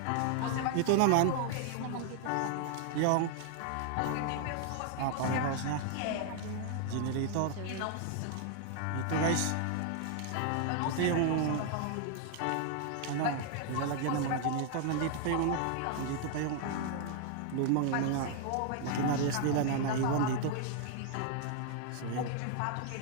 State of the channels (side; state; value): both; different; correlation 0.00